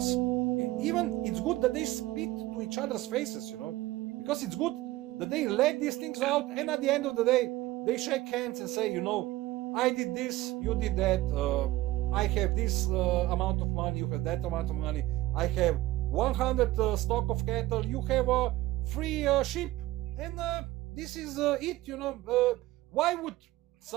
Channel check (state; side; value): quieter; left; 17.1 dB